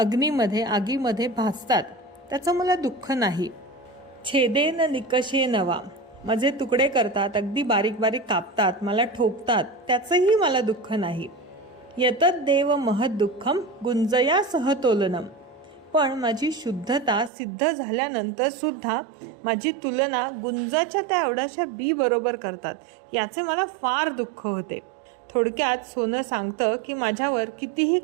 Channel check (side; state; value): left; drops out; at 17.3 s